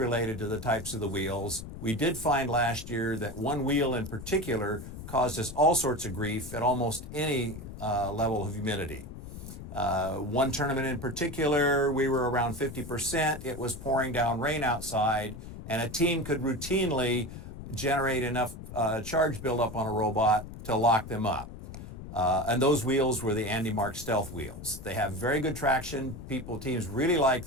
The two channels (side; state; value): left; noise; rumble, 11 dB below the sound